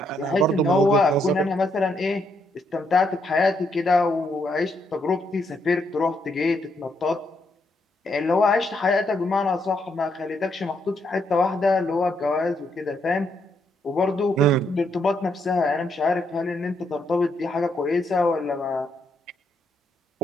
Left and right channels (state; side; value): normal; both; correlation 0.76